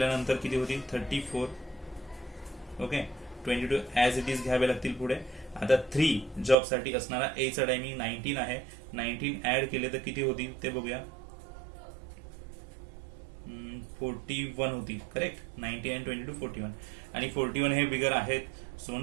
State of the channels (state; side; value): drops out; left; at 6.6 s